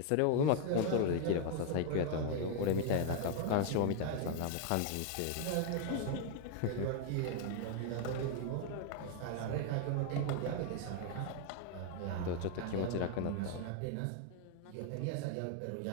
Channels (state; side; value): different; both; correlation 0.00